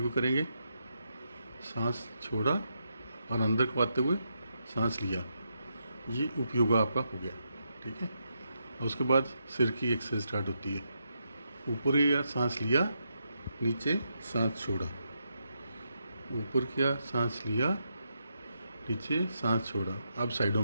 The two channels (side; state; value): both; inverted; correlation -0.82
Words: करेंगे, सांस छोड़ा और अंदर को आते हुए सांस लिया। ये उपयोगा आपका हो गया। ठीक है। और उसके बाद सिर की एक्सरसाइज स्टार्ट होती है। ऊपर या सांस लिया, नीचे सांस छोड़ा, ऊपर किया, सांस लिया, नीचे सांस छोड़ा। अब